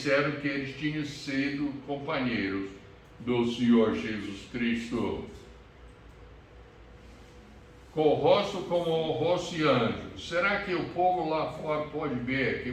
que eles tinham sido companheiros do Senhor Jesus Cristo. Com o rosto como o rosto de anjo. Será que o povo lá fora pode ver que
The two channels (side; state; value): both; identical; correlation 1.00